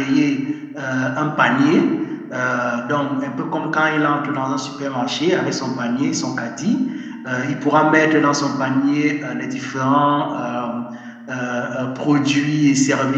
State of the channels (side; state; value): both; identical; correlation 1.00